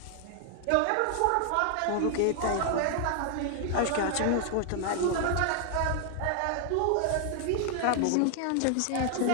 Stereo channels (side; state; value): both; different; correlation 0.00